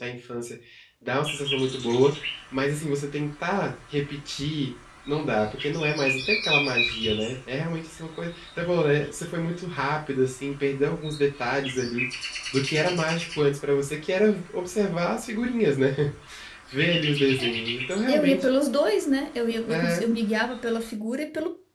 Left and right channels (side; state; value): both; identical; correlation 1.00